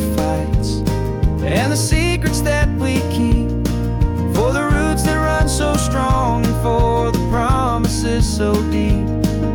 fights and the secrets that we keep, for the roots that run so strong and for the promises so deep.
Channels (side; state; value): both; identical; correlation 1.00